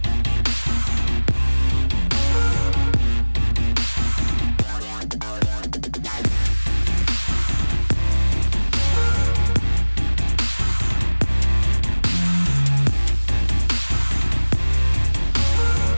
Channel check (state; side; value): inverted; both; correlation -1.00